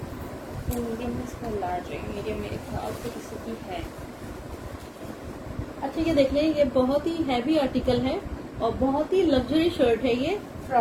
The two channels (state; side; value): identical; both; correlation 1.00